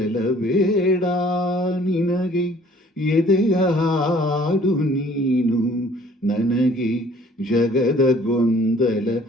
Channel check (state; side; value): normal; both; correlation 0.55